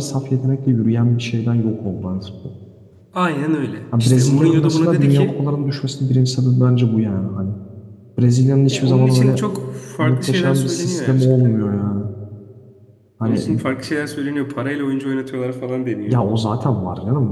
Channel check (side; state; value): both; identical; correlation 1.00